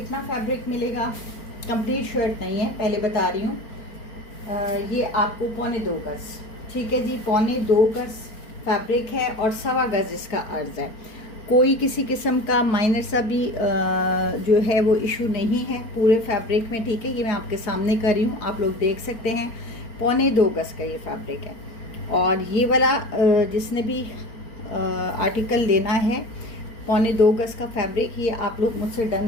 फैब्रिक मिलेगा? कंप्लीट शर्ट नहीं है, पहले बता रही हूँ। ये आपको 2.25 गज, ठीक है जी, 2.25 गज फैब्रिक है और 1.25 गज इसका अर्ज है। कोई किसी किस्म का माइनर सा भी जो है वो इशू नहीं है पूरे फैब्रिक में, ठीक है। ये मैं आपके सामने कर रही हूँ, आप लोग देख सकते हैं। 2.25 गज का ये फैब्रिक है। और ये वाला जिसने भी आर्टिकल लेना है 2.25 गज का फैब्रिक, ये आप लोग मुझसे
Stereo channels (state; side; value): late; right; 4.4 ms